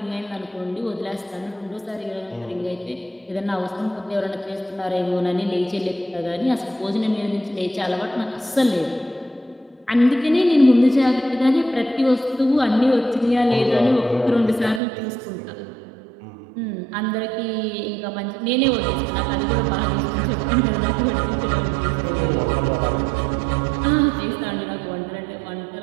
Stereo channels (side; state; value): left; drops out; at 14.8 s